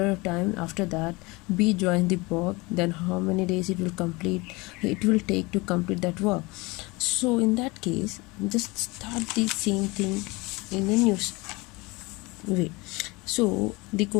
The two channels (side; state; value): right; quieter; 24.3 dB